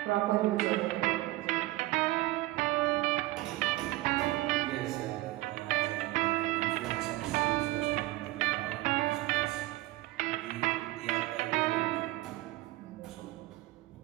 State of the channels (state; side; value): quieter; left; 18.6 dB